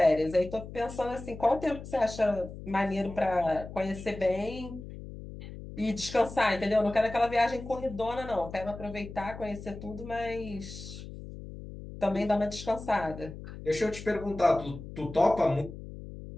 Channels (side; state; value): left; noise; hum, 12 dB below the sound